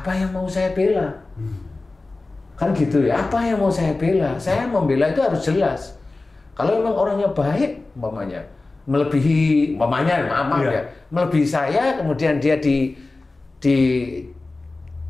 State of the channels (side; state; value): right; quieter; 3.3 dB